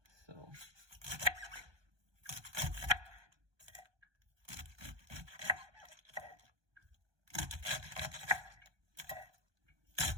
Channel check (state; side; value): late; left; 1.2 ms